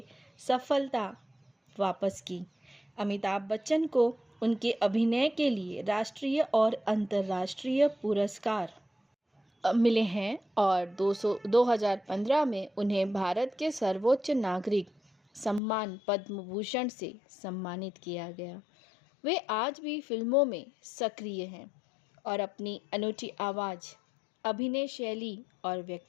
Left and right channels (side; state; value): right; drops out; at 15.6 s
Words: सफलता वापस की। अमिताभ बच्चन को उनके अभिनय के लिए राष्ट्रीय और अंतर्राष्ट्रीय पुरस्कार मिले हैं और 2015 में उन्हें भारत के सर्वोच्च नागरिक सम्मान पद्म भूषण से सम्मानित किया गया। वे आज भी फिल्मों में सक्रिय हैं और अपनी अनूठी आवाज़, अभिनय शैली और